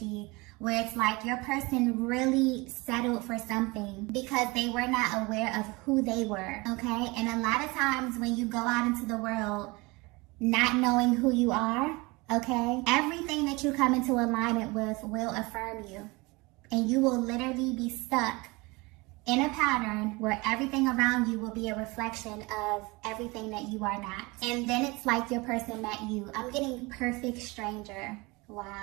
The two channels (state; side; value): quieter; left; 24.7 dB